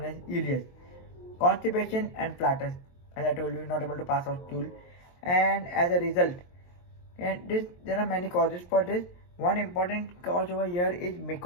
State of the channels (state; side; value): late; right; 23 ms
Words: as ileus. Constipation and flatus. As I told you, not able to pass out stool, and as a result, and there are many causes for this. One important cause over here is